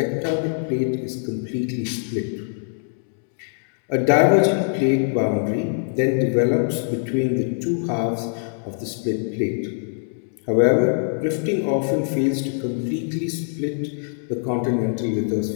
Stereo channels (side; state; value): right; silent; digital silence